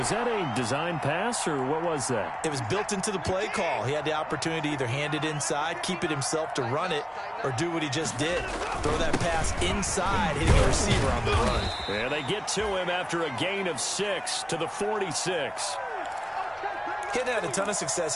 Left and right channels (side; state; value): both; identical; correlation 1.00